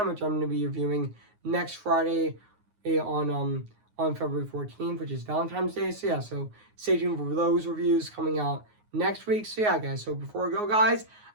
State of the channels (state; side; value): late; left; 9.5 ms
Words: which I'm going to be reviewing next Friday on February 14th, which is Valentine's Day. So yeah, so stay tuned for those reviews coming out next week. So yeah, guys, so before we go, guys,